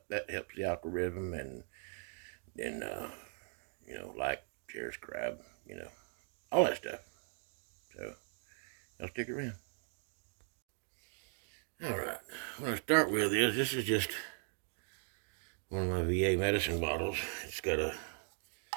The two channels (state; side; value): silent; left; 52 dB below the other